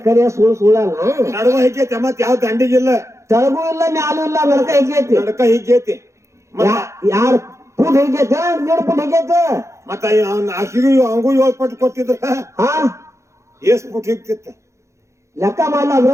ಸುಳ್ಳ ನಡುವ ಹಿಕ್ಕೈತೆ ಮತ್ ಯಾವ ದಂಡಿಗಿಲ್ಲ ತಳಗೂ ಇಲ್ಲ ಮ್ಯಾಲೂ ಇಲ್ಲ ನಡಕ ಹೆಗ್ಗೈತಿ ನಡಕ ಹಿಕ್ಕೈತಿ ಯಾರು ಫುಟ್ ಹೆಗ್ಗೈತಿ 2 ಫುಟ್ ಹೆಗ್ಗೈತಿ ಮತ್ತ ಅವ್ನ ಆಕಿಗೂ ಅವಂಗೂ 7 ಪಟ್ಟು ಕೊಟ್ಟಿದ್ರ ಹಾ ಎಷ್ಟ್ ಪುಟ್ ಹಿಕ್ತಿತ್ತ ಲೆಕ್ಕ ಮಾಡಲ್ಲ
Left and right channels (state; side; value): late; left; 0.14 ms